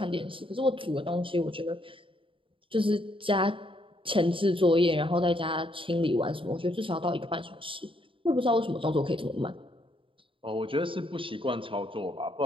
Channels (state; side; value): late; left; 0.25 ms